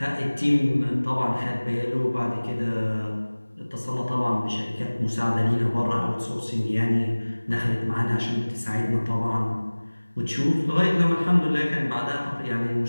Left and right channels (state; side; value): inverted; both; correlation -1.00